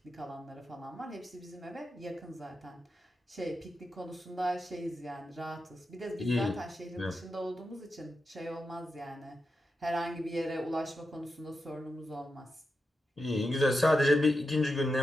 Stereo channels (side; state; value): both; normal; correlation 0.88